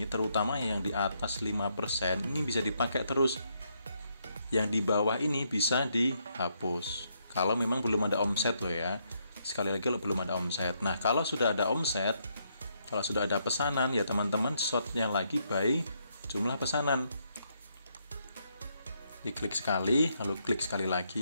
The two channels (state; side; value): inverted; both; correlation -0.76